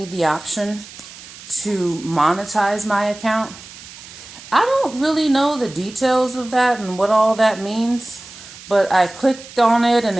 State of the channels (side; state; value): right; noise; hiss, 17 dB below the sound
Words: the option to monetize my account. I don't really know the details of that and what all that means, but I clicked on it and